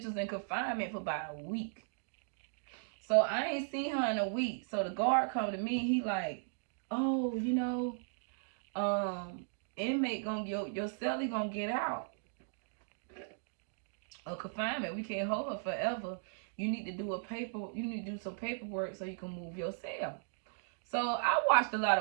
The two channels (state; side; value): silent; left; digital silence